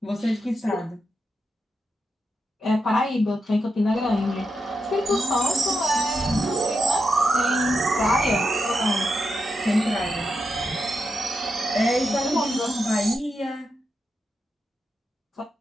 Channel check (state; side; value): normal; both; correlation 0.86